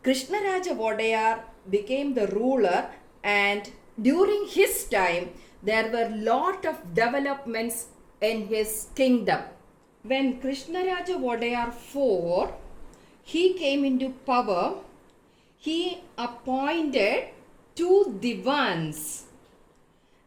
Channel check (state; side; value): identical; both; correlation 1.00